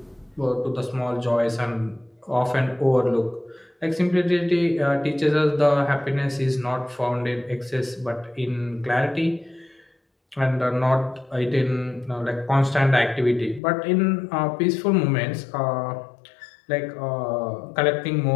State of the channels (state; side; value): drops out; right; at 13.6 s